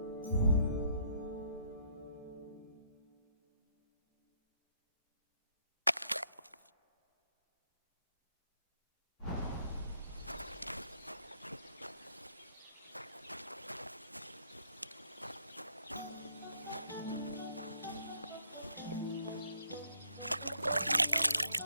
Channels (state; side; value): inverted; both; correlation -0.69